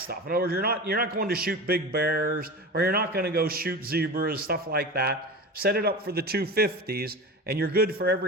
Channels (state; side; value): normal; both; correlation 0.29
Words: In other words, you're not going to shoot big bears, or you're not going to go shoot zebras, stuff like that. Set it up for the 250s, and you're good for